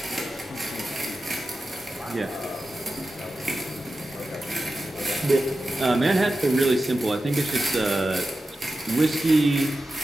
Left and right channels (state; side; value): normal; both; correlation 0.92